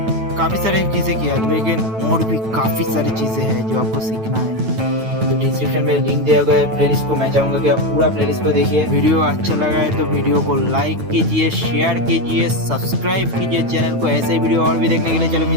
काफ़ी सारी चीज़ें किया, लेकिन और भी काफ़ी सारी चीज़ें हैं जो आपको सीखना है। तो डिस्क्रिप्शन में लिंक दिया गया है प्लेलिस्ट को, मैं चाहूँगा कि आप पूरा प्लेलिस्ट को देखिए। वीडियो अच्छा लगा है तो वीडियो को लाइक कीजिए, शेयर कीजिए, सब्सक्राइब कीजिए चैनल को। ऐसे वीडियो और भी देखने के लिए चलो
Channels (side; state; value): left; late; 9.1 ms